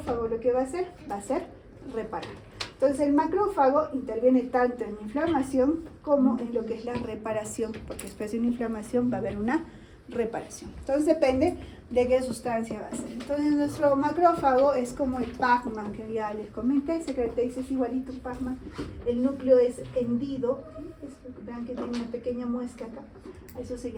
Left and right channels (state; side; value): identical; both; correlation 1.00